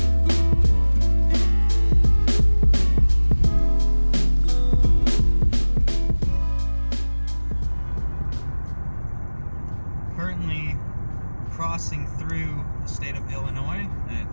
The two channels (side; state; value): both; inverted; correlation -1.00